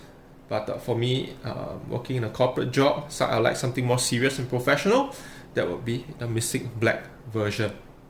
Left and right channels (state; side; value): identical; both; correlation 1.00